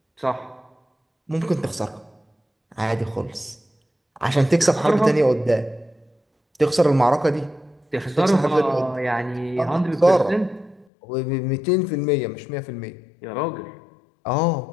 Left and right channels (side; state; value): right; drops out; at 10.9 s